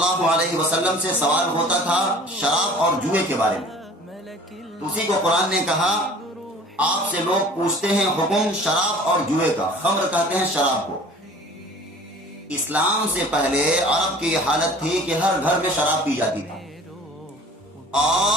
علیہ وسلم سے سوال ہوتا تھا شراب اور جوئے کے بارے میں، تو اسی کو قرآن نے کہا آپ سے لوگ پوچھتے ہیں حکم شراب اور جوئے کا، خمر کہتے ہیں شراب کو۔ اسلام سے پہلے عرب کی یہ حالت تھی کہ ہر گھر میں شراب پی جاتی تھی،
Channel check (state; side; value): normal; both; correlation 0.46